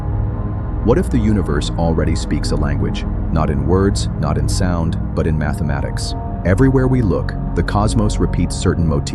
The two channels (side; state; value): both; identical; correlation 1.00